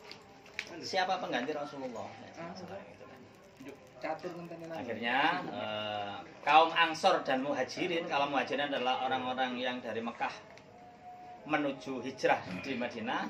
siapa pengganti Rasulullah. Akhirnya kaum Ansor dan Muhajirin, kalau Muhajirin adalah orang-orang yang dari Mekah menuju hijrah di Madinah,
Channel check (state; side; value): identical; both; correlation 1.00